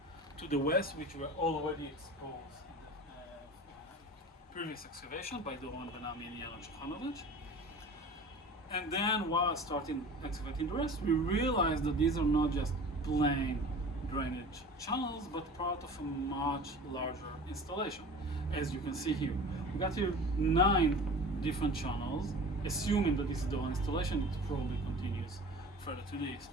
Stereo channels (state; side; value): normal; both; correlation 0.39